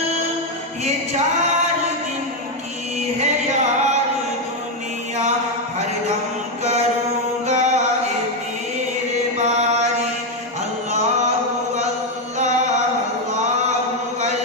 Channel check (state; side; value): normal; both; correlation 0.04